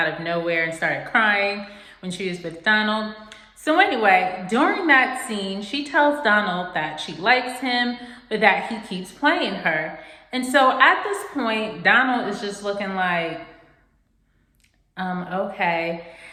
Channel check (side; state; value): both; identical; correlation 1.00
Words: of nowhere and started crying when she was with Donald. So anyway, during that scene, she tells Donald that she likes him, but that he keeps playing her. And so at this point, Donald is just looking like, okay.